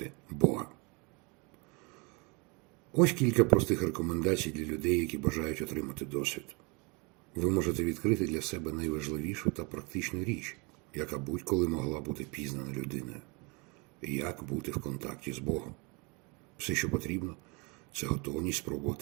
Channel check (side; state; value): left; quieter; 29.9 dB